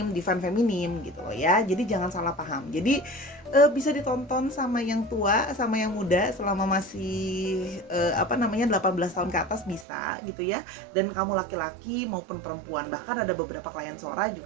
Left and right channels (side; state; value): left; drops out; at 9.9 s